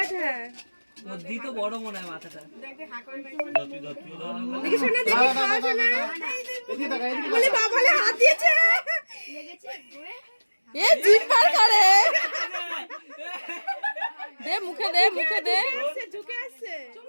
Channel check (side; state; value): both; inverted; correlation -1.00